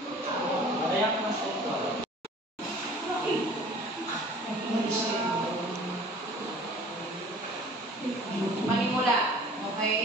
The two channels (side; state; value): both; normal; correlation 0.48